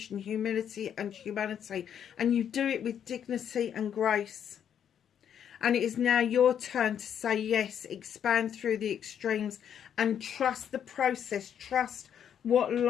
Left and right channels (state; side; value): quieter; right; 8.9 dB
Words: humility and humanity. And you do it with dignity and grace. And it is now your turn to say yes, expand through the extremes and trust the process. Trust what